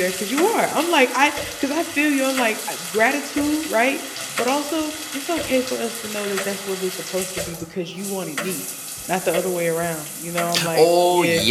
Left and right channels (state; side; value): identical; both; correlation 1.00